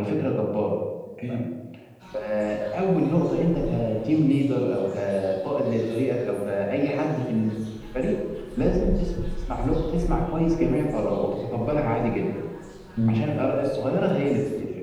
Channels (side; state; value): both; identical; correlation 1.00